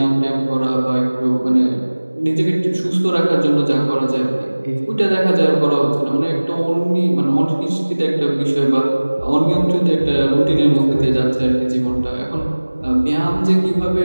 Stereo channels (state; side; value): inverted; both; correlation -1.00